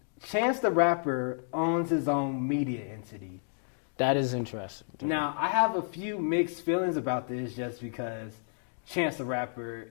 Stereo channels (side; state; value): right; silent; digital silence